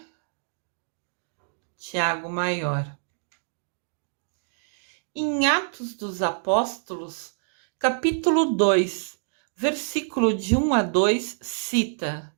Tiago Maior. Em Atos dos Apóstolos, capítulo 2, versículo de 1 a 2, cita:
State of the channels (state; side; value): silent; left; digital silence